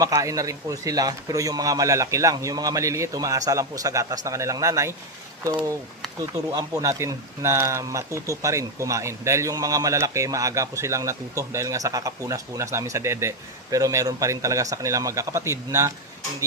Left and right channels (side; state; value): both; normal; correlation 0.05